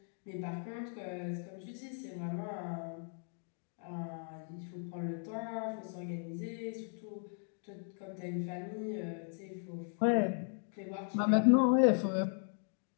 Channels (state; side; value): silent; right; 53 dB below the other